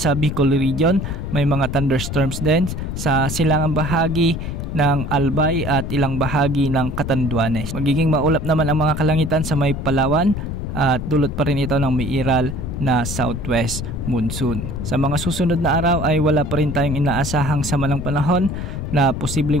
Bicol Region, may mga thunderstorms din sa silangang bahagi ng Albay at ilang bahagi ng Catanduanes. Magiging maulap naman ang mga kalangitan sa may Palawan at dulot pa rin ito ng umiiral na southwest monsoon. Sa mga susunod na araw ay wala pa rin tayong inaasahang sama ng panahon na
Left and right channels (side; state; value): left; noise; rumble, 5 dB below the sound